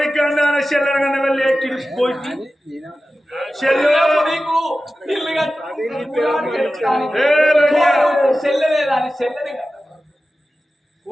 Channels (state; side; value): normal; both; correlation 0.94